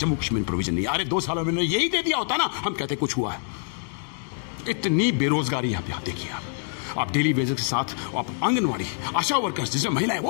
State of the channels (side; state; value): right; silent; 61 dB below the other